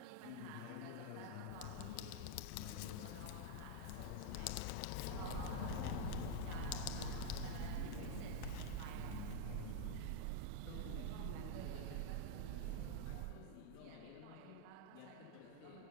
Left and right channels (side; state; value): both; different; correlation 0.01